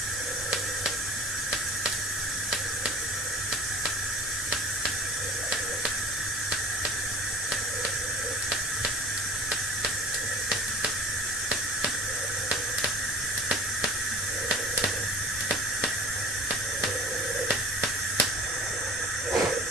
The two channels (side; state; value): both; normal; correlation 0.43